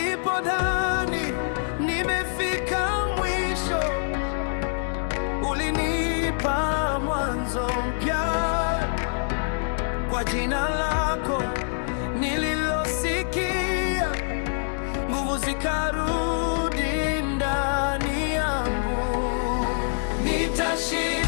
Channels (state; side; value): silent; right; digital silence